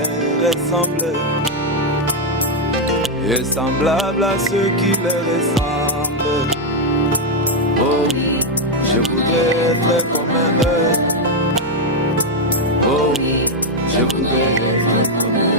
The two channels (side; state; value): both; normal; correlation 0.02